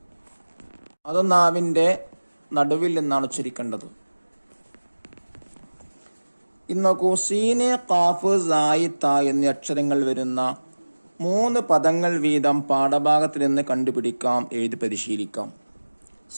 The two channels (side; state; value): both; inverted; correlation -1.00